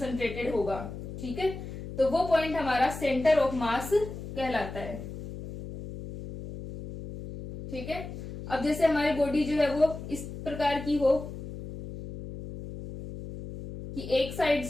होगा। ठीक है, तो वो पॉइंट हमारा सेंटर ऑफ मास कहलाता है। ठीक है, अब जैसे हमारी बॉडी जो है वो इस प्रकार की हो कि एक साइड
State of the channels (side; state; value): left; noise; hum, 10 dB below the sound